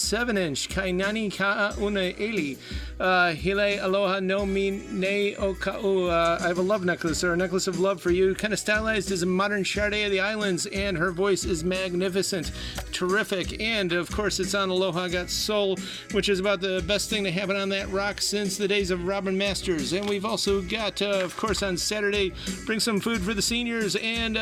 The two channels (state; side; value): identical; both; correlation 1.00